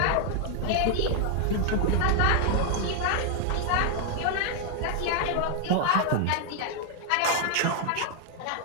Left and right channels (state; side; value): different; both; correlation 0.00